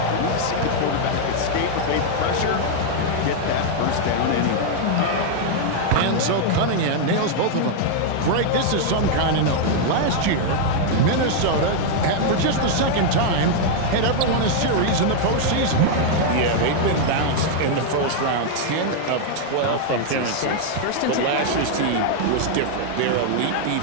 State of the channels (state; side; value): different; both; correlation 0.00